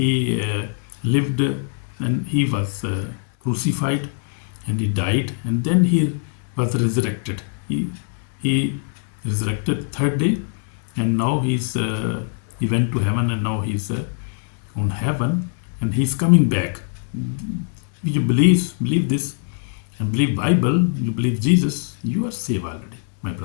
lived, and He was crucified, and He died, and then He was resurrected. He resurrected third day, and now He went to heaven, and now He's on heaven, and He's coming back. You believe this, and believe Bible, you believe Jesus, you are saved already, my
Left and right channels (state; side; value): silent; right; 63 dB below the other